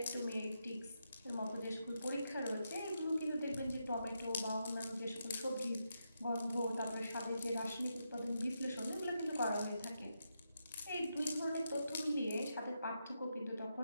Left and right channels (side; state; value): both; inverted; correlation -0.84